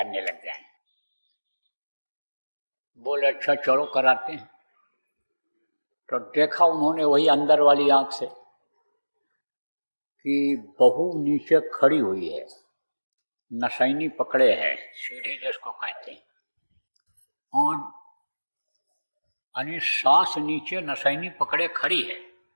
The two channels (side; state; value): both; inverted; correlation -1.00